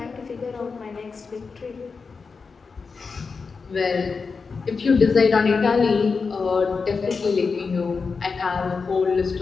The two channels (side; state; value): right; quieter; 4.9 dB